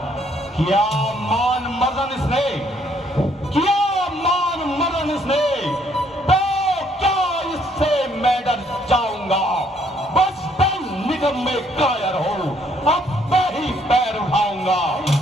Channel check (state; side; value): normal; both; correlation 0.67